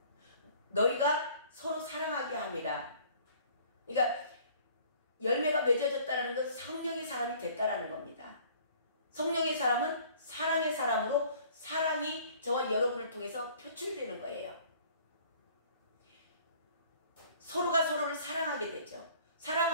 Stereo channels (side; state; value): both; inverted; correlation -0.53